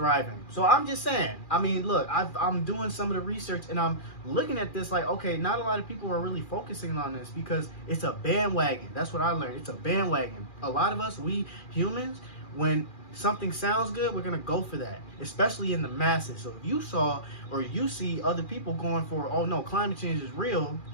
So I'm just saying, I mean, look, I'm doing some of the research and I'm looking at this like, okay, not a lot of people are really focusing on this because it's a bandwagon. That's what I learned. It's a bandwagon. A lot of us, we humans, when something sounds good, we're going to go for that, especially in the masses. So if you saw or you see other people going for, oh no, climate change is real,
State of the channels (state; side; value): late; right; 2.4 ms